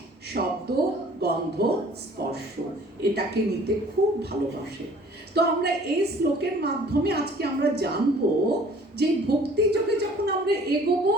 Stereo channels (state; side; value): normal; both; correlation 0.52